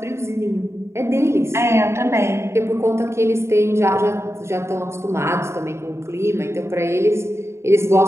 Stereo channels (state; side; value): late; left; 0.13 ms